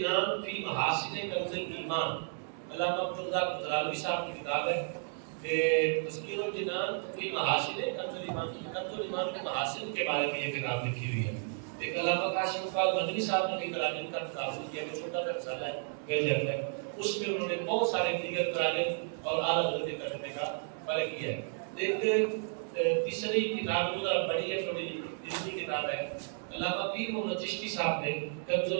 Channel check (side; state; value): left; silent; 56 dB below the other